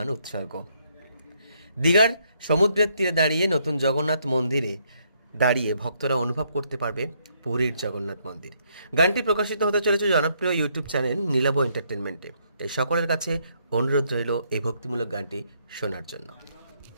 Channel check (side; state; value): both; inverted; correlation -0.72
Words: উৎসর্গ। দীঘার সমুদ্রের তীরে দাঁড়িয়ে নতুন জগন্নাথ মন্দিরে দাঁড়িয়ে ভক্তরা অনুভব করতে পারবে পুরীর জগন্নাথ মন্দির। গানটি প্রকাশিত হতে চলেছে জনপ্রিয় ইউটিউব চ্যানেল নীলাভ এন্টারটেনমেন্টে। তাই সকলের কাছে অনুরোধ রইল এই ভক্তিমূলক গানটি শোনার জন্য।